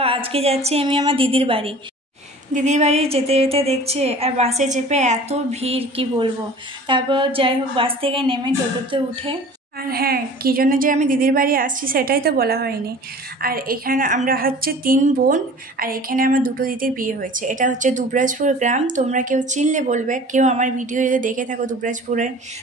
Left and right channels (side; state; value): both; normal; correlation 0.43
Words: আজকে যাচ্ছি আমি আমার দিদির বাড়ি। দিদির বাড়ি যেতে যেতে দেখছি আর বাসে চেপে এত ভিড়, কি বলবো। তারপর যাই হোক, বাস থেকে নেমে টোটোতে উঠে, আর হ্যাঁ, কী জন্য যে আমি দিদির বাড়ি আসছি সেটাই তো বলা হয়নি। আর এখানে আমরা হচ্ছে 3 বোন, আর এখানে আমার 2 দিদির বিয়ে হয়েছে। এটা হচ্ছে দুবরাজপুর গ্রাম। তোমরা কেউ চিনলে বলবে, কেউ আমার ভিডিও যদি দেখে থাকো দুবরাজপুরের,